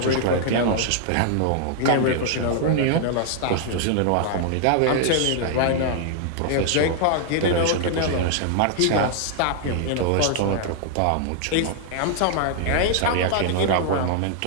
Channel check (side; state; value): both; different; correlation 0.00